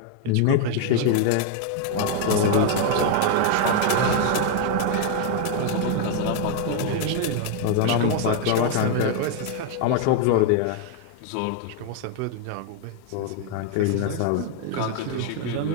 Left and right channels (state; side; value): different; both; correlation 0.00